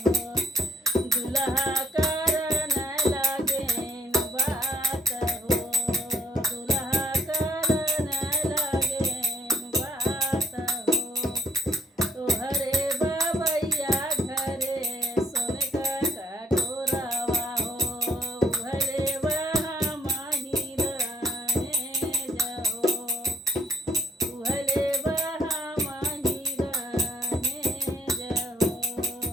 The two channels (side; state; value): both; normal; correlation 0.66